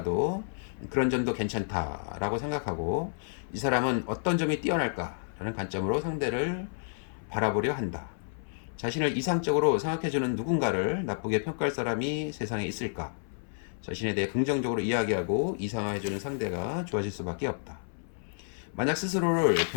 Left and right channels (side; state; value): right; silent; 58 dB below the other